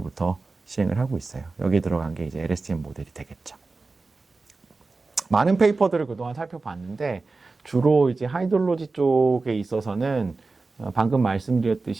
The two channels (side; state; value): left; quieter; 3.8 dB